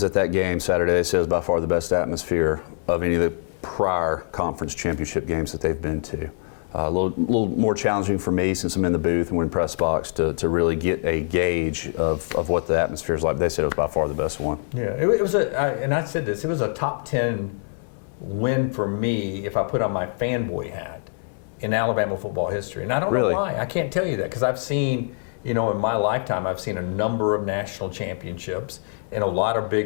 at that game Saturday. It says by far the best atmosphere of any of the prior conference championship games that they've been to. A little more challenging for me since I'm in the booth and we're in press box to really get a gauge of what the atmosphere is like. They said it was by far the best one. Yeah, it was and I said this, it was a top 10 win for me if I put on my fanboy hat in Alabama football history. And I don't know why. I can't tell you that because I've seen, you know, in my lifetime, I've seen a number of national championships and a lot of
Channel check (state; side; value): silent; right; digital silence